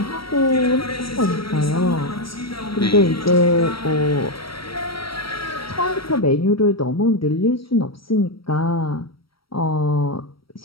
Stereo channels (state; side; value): late; right; 0.75 ms